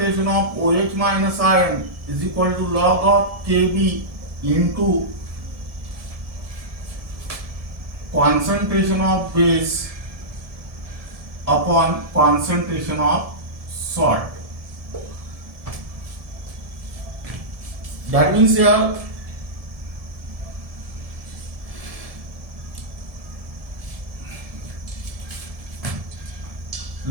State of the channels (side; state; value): left; late; 1.7 ms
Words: of OH minus ion is equal to log of Kb into concentration of base upon concentration of salt. That means here